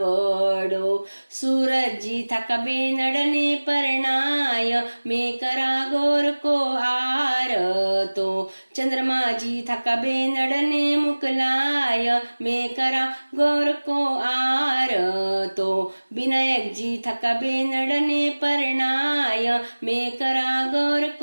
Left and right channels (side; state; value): both; inverted; correlation -1.00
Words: सूरजी थका बेनड़ने परणाय मैं करा गौर को आरतो चंद्रमा जी थका बेनड़ने मुकलाय मैं करा गौर को आरतो विनायक जी थका बेनड़ने परणाय मैं करा गौर